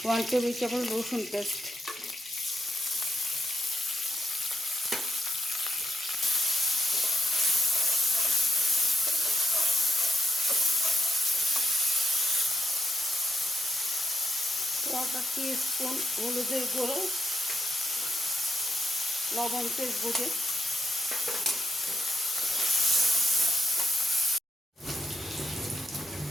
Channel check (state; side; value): normal; both; correlation 0.80